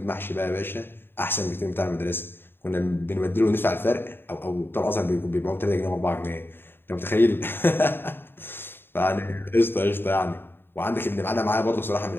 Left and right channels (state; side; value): late; right; 0.10 ms